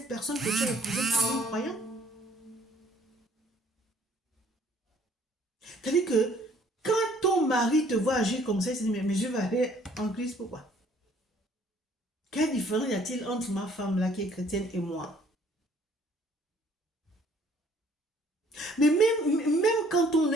personne que tu as épousée en croyant. C'est-à-dire que quand ton mari te voit agir comme ça, il se dit, mais je vais aller en Christ, pourquoi? Quelle différence y a-t-il entre ma femme là qui est chrétienne et moi? Mais même quand on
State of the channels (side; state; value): both; normal; correlation 0.60